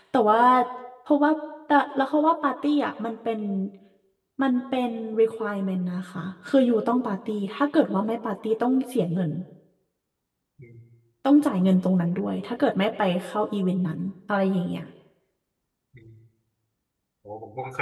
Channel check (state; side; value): identical; both; correlation 1.00